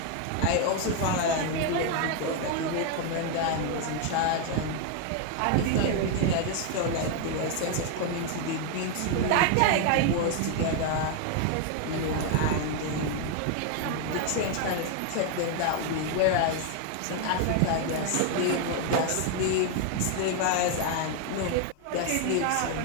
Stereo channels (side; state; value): both; different; correlation 0.01